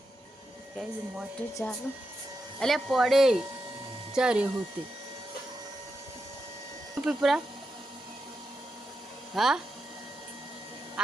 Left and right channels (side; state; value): both; normal; correlation 0.87